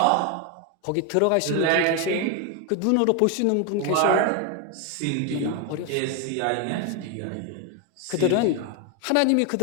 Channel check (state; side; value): different; both; correlation 0.01